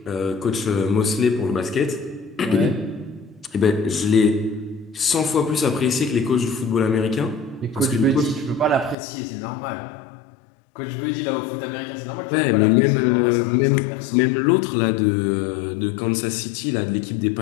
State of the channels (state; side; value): drops out; right; at 9.0 s